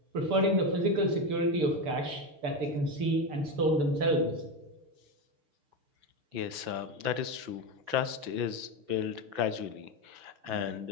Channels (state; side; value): late; left; 5.9 ms